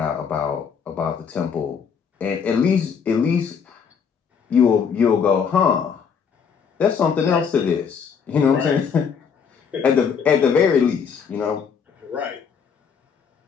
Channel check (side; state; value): right; quieter; 6.6 dB